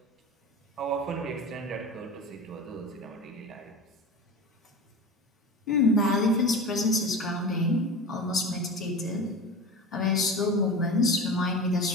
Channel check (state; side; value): normal; both; correlation 0.31